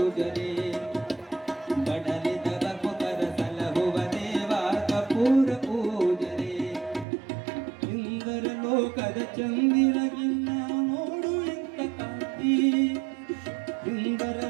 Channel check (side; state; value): left; drops out; at 7.1 s